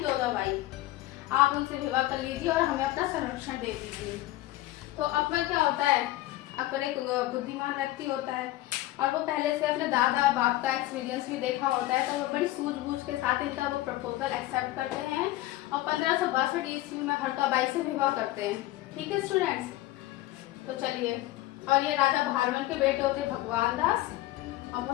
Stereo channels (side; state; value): right; quieter; 16.5 dB